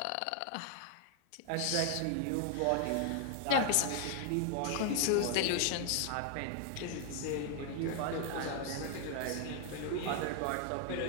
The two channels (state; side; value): different; both; correlation 0.00